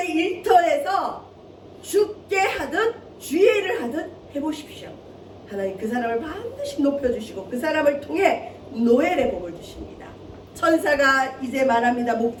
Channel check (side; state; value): both; identical; correlation 1.00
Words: 일터에서 죽게 하든 주의 일을 하든 해보십시오. 하나님 그 사람을 반드시 높여주시고 그 사람을 통해 노엘의 복을 주십니다. 천사가 이제 말합니다.